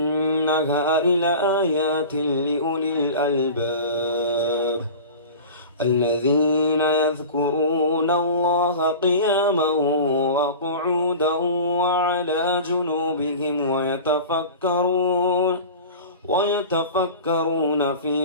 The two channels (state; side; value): inverted; both; correlation -0.35